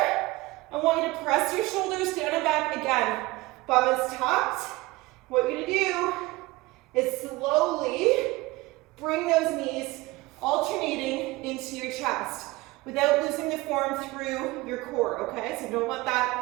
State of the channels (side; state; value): left; quieter; 21.0 dB